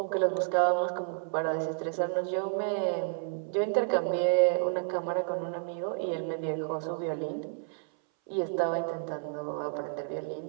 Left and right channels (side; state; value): left; silent; 57 dB below the other